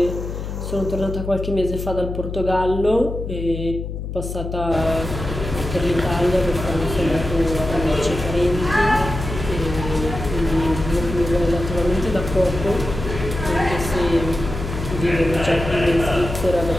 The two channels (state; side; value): noise; left; hum, 6 dB below the sound